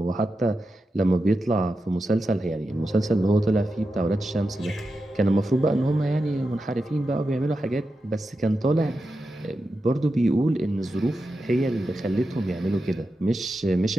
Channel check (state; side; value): normal; both; correlation 0.90